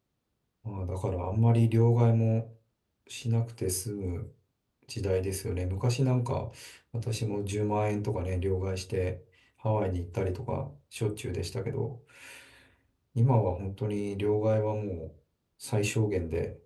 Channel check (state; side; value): identical; both; correlation 1.00